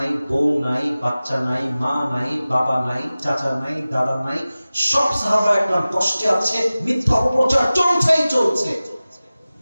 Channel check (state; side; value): inverted; both; correlation -0.97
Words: বউ নাই, বাচ্চা নাই, মা নাই, বাবা নাই, চাচা নাই, দাদা নাই, সব সাহাবা একদম কষ্টে আছে, মিথ্যা অপপ্রচার চলছেই চলছে।